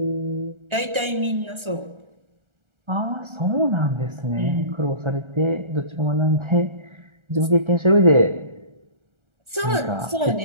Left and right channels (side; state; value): left; late; 1.4 ms